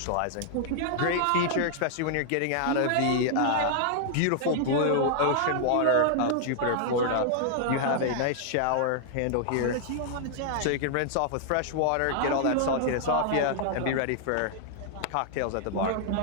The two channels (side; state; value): both; different; correlation -0.01